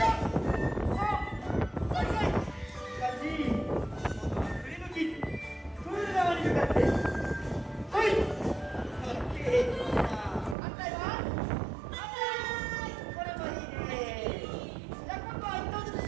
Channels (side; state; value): left; drops out; at 10.6 s